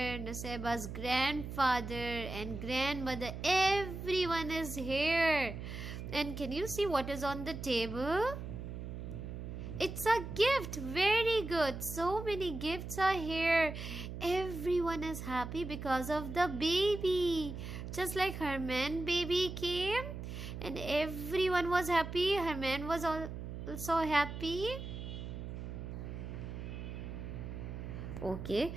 Nusaybah's grandfather and grandmother. Everyone is here. And can you see what is on the table? It's a gift. Very good. So many gifts are here. Everyone is happy because of the baby. Just like Herman baby came and everyone was happy. Herman was also happy. Okay,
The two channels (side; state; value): right; noise; hum, 7 dB below the sound